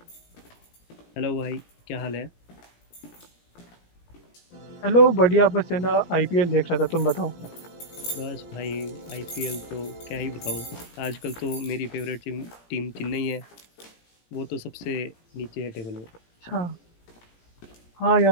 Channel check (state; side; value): late; right; 17 ms